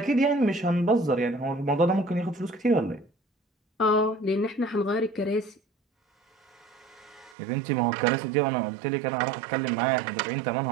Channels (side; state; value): left; drops out; at 7.4 s